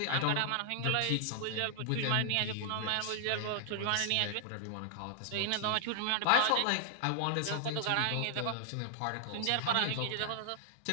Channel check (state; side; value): different; both; correlation -0.01